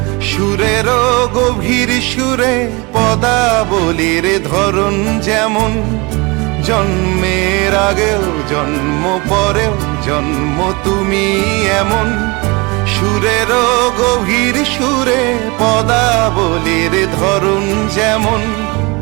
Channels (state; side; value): quieter; left; 26.7 dB